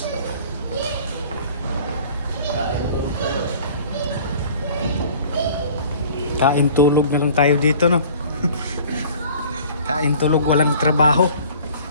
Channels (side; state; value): both; inverted; correlation -0.48